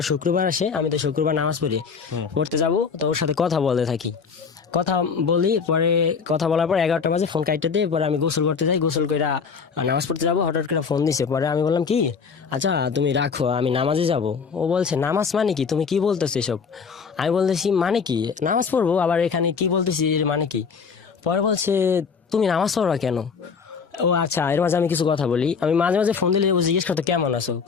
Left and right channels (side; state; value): right; quieter; 5.8 dB